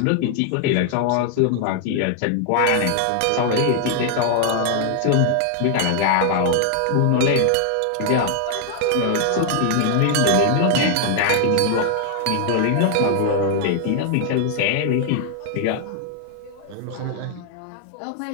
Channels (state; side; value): different; both; correlation 0.00